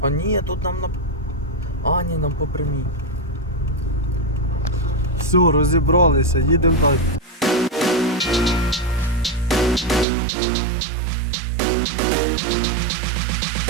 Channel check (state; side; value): drops out; left; at 10.1 s